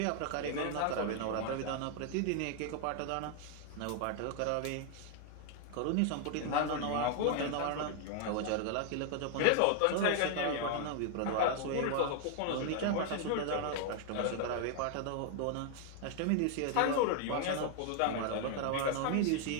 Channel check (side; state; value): both; different; correlation 0.00